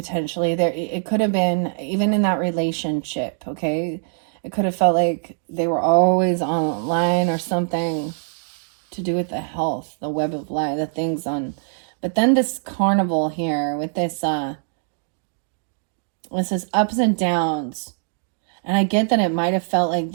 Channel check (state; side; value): silent; left; digital silence